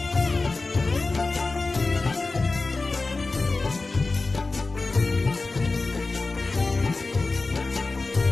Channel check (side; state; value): right; quieter; 3.6 dB